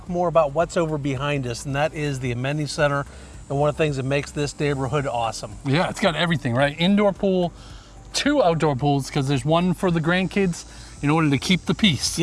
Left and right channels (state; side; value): identical; both; correlation 1.00